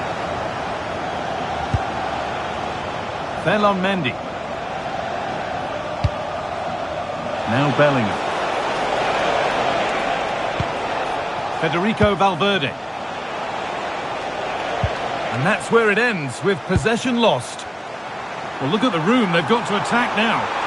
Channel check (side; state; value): both; identical; correlation 1.00